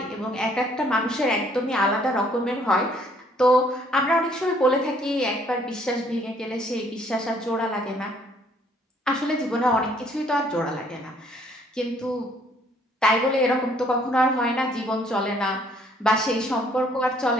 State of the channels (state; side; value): normal; both; correlation 0.63